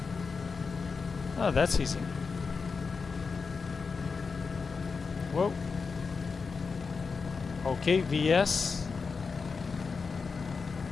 Oh, that's easy. Whoa. Okay, VS.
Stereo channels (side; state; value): right; quieter; 4.9 dB